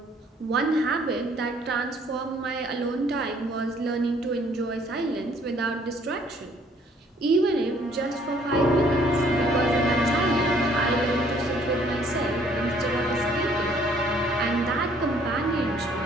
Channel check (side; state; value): both; normal; correlation 0.61